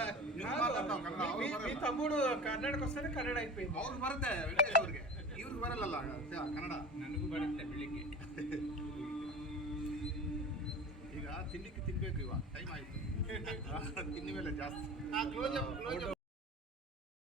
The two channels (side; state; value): both; normal; correlation 0.34